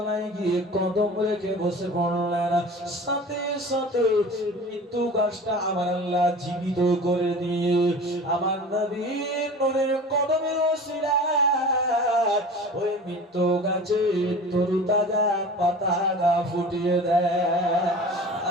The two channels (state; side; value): normal; both; correlation 0.39